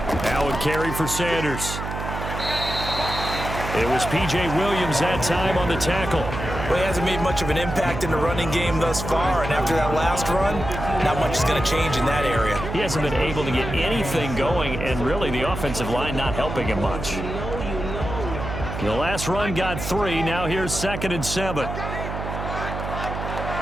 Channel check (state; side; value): noise; right; hum, 6 dB below the sound